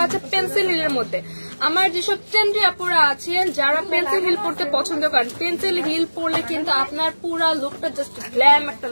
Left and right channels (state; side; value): inverted; both; correlation -1.00